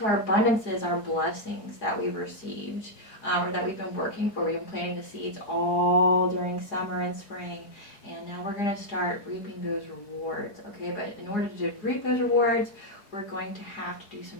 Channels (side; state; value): right; late; 4.7 ms